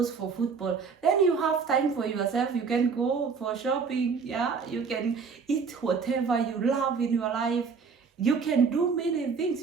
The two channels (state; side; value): quieter; left; 5.4 dB